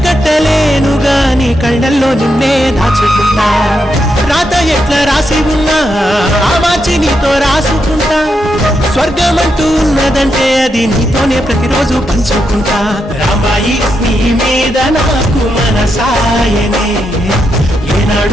కట్టలేను గాని కళ్ళల్లో నిన్నే దాచుకుంటా రాత ఎట్లా రాసి ఉన్నా ఆ మార్చి నీతో రాసుకుంటా స్వర్గమంటూ ఉన్నదంటే అది నీతోనే ప్రతిరోజు పంచుకుంటా రాంబాయి నీ మీద నాకు మనసాయనే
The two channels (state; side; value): normal; both; correlation 0.83